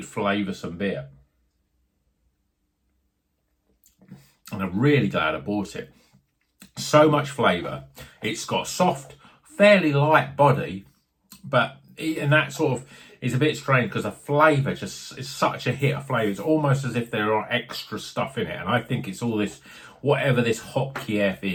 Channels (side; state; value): both; identical; correlation 1.00